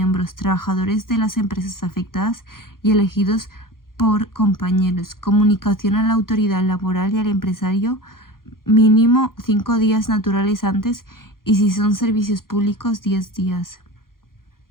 trabajadores de las empresas afectadas y elegidos por compañeros. Comunicación a la autoridad laboral y al empresario, mínimo 5 días naturales antes y si son servicios públicos 10 días.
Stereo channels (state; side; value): late; right; 0.92 ms